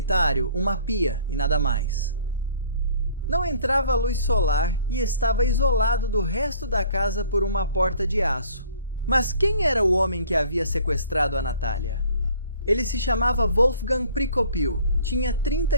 uma pia e nada mais. Não entrava luz solar e estava isolado do resto da casa por uma porta de aço. Mas quem era o homem que havia sequestrado a Natalia? Ele se chamava Wolfgang Prikopil, tinha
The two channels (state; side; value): inverted; both; correlation -0.54